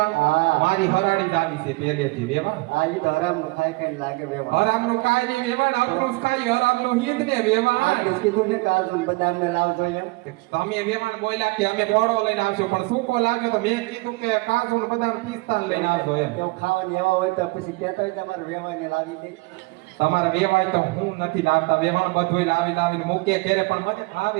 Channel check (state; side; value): quieter; left; 24.8 dB